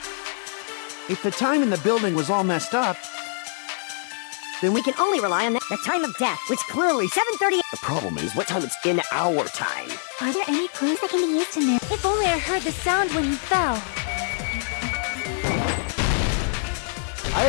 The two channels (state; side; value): silent; right; digital silence